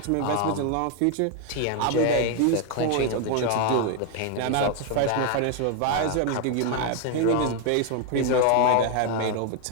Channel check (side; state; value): both; different; correlation 0.01